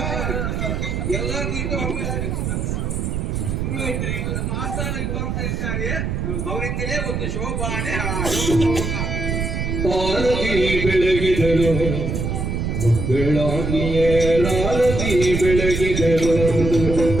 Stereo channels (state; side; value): noise; right; rumble, 2 dB below the sound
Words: ಎಲ್ಲ ನಮ್ಮ ಆಸ್ಥಾನಕ್ಕೆ ಬರ್ತಾ ಇದ್ದಾರೆ. ಅವರಿಂದಲೇ ಒಂದು ಶೋಭಾನೆ ಆರತಿ ಬೆಳಗಿದರು ಮಂಗಳಾಗಿಯೇ ರಾರತಿ ಬೆಳಗಿದರು